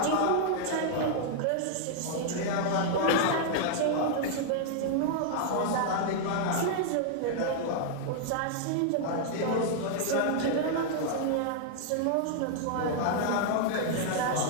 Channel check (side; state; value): both; different; correlation -0.01